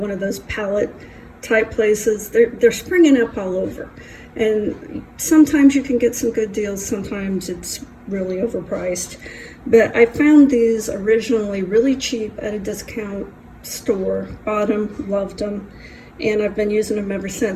of those pallet type places. They're springing up all over, and sometimes you can get some good deals, sometimes it's really overpriced. But I found these originally really cheap at a discount store, bought them, loved them, and I've been using them ever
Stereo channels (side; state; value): both; identical; correlation 1.00